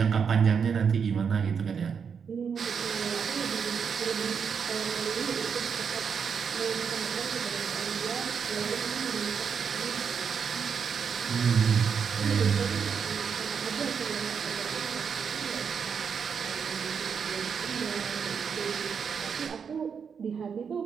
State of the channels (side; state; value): left; quieter; 6.6 dB